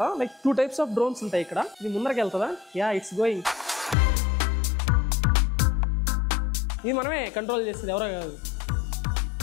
లైక్ 2 types ఆఫ్ డ్రోన్స్ ఉంటాయి ఇక్కడ. ఇది ముందరకి వెళ్తుందా? Yeah, it's going. ఇది మనమే కంట్రోల్ చేస్తుంది, ఎవరో కాదు.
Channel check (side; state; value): right; drops out; at 4.0 s